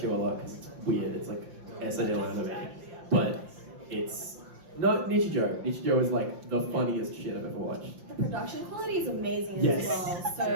a lot because it's weird. It's like SNL anime, but it's not Nichijou. Nichijou is like the funniest shit I've ever watched. The production quality is amazing as well. So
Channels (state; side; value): late; left; 5.7 ms